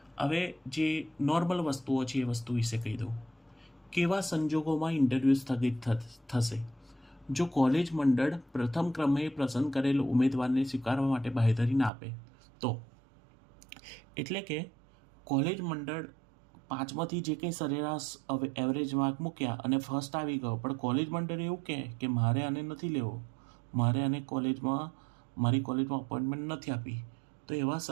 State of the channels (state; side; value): drops out; left; at 11.9 s